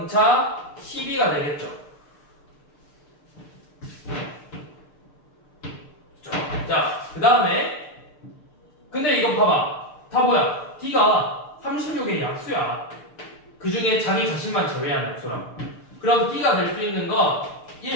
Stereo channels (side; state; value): right; late; 6.7 ms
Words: 12가 되겠죠. 자, 그 다음에 근데 이거 봐봐. 다 뭐야? d가 36의 약수야. 그 중에 자기 자신만 제외한 약수라고. 그럼 d가 될 수 있는 건